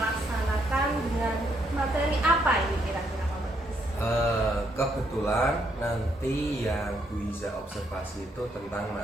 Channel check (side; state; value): both; normal; correlation 0.74